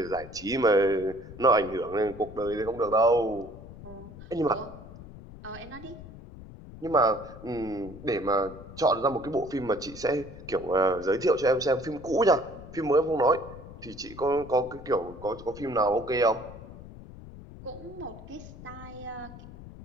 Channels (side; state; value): left; noise; rumble, 16 dB below the sound